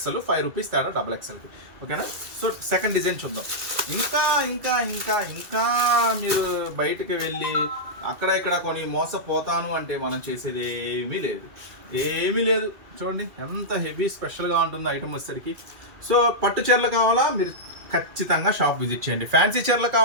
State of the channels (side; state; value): left; late; 2.3 ms